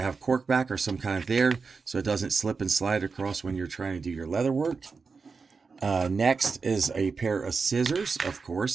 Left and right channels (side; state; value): left; quieter; 4.8 dB